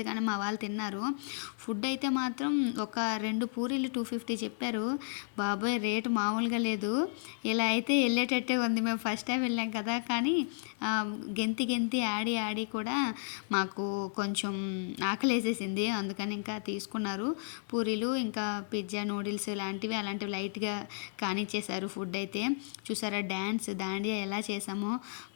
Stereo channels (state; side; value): silent; right; digital silence